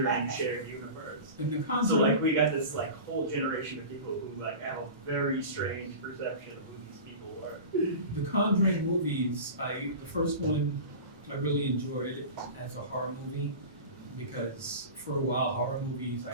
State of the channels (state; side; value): inverted; both; correlation -0.32